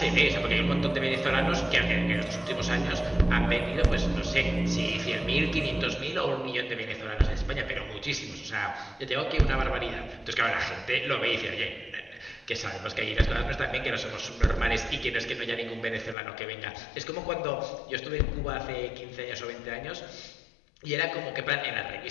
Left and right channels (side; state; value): right; drops out; at 16.2 s